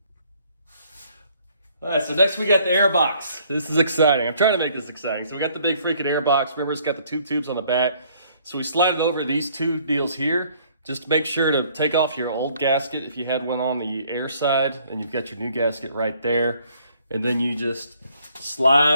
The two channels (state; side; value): inverted; both; correlation -0.62